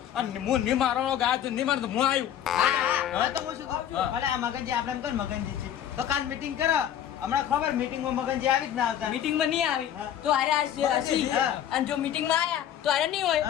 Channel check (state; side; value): quieter; right; 10.4 dB